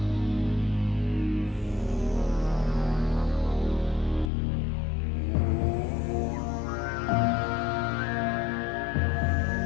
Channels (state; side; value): drops out; right; at 4.3 s